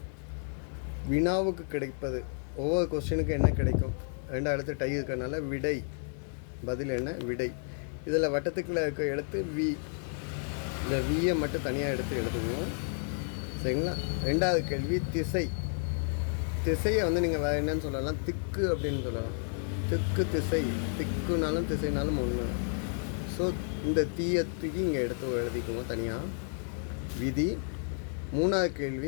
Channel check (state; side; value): silent; right; 57 dB below the other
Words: வினாவுக்கு கிடைப்பது, ஒவ்வொரு கொஸ்டினுக்கு என்ன கிடைக்கும், 2 எழுத்து டை இருக்கிறதுனால விடை, பதில் என்ன விடை. இதில் வட்டத்துக்குள்ளே இருக்க எழுத்து வி, இந்த வியை மட்டும் தனியாக எடுத்து எழுதுவோம். சரிங்களா? 2வது கேள்வி திசை. திசையை நீங்கள் வேறு என்னன்னு சொல்லலாம், திக்கு அப்படின்னு சொல்லலாம். திக்கு திசை, திக்குனாலும் திசைனாலும் ஒன்று. ஸோ இந்த தீயை தூக்கி இங்கே எடுத்து எழுதிக்குவோம் தனியாக. விதி. 3வது